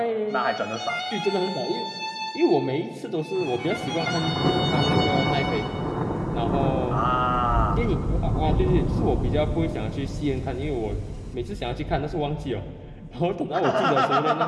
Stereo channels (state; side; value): identical; both; correlation 1.00